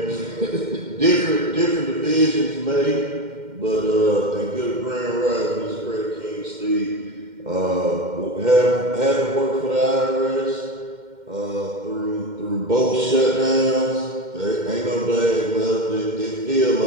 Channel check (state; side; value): late; left; 2.1 ms